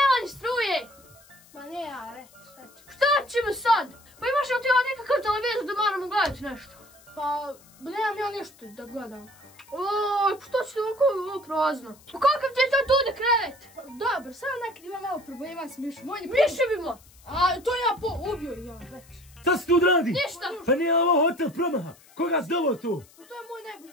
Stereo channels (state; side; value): noise; left; hiss, 26 dB below the sound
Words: ni struje. Ma ne, are, šta će? Šta ćemo sad? Pa imaš li ti ovdje nekakav televizor da moramo gledati nešto? Pa, nemam ja ništa da gledam. Oj, pa što će ovako ovo prazno? Pa kakav ti je to tu da krevet? Pa, dobro, samo nekad ima malo problema s mišom. Miševimo. A to ja ubio ja već. Šta si tu odradi? Ništa. Pa nije ovo hotel promaha. Koga si doveo tu? Pa to je moj